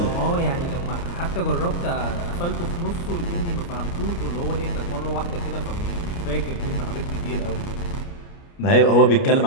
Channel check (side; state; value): right; late; 29 ms